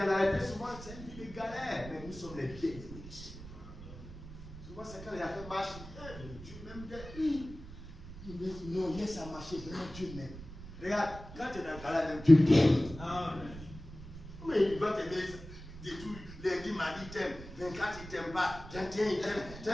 la réalité, souvent, c'est une vie de galère. Mais nous sommes les bien-aimés. Souvent, c'est quand il a fait marche, Dieu m'aime bien. Non, laisse à marcher, vraiment Dieu m'aime. Regarde, quand tu es dans le galère, même Dieu t'aime. Mais il va t'aimer de tout. Lundi, mardi, il t'aime. 24, il t'aime pas. 31, il t'aime.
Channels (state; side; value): noise; right; rumble, 14 dB below the sound